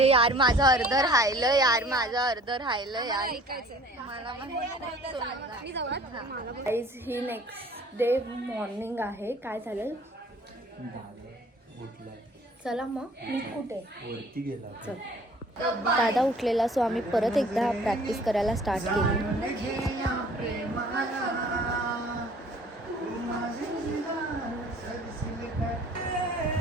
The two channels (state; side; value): normal; both; correlation 0.52